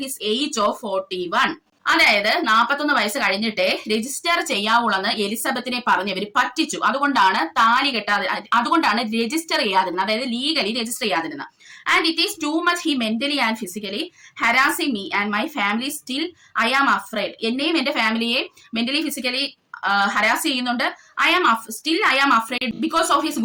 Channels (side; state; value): both; identical; correlation 1.00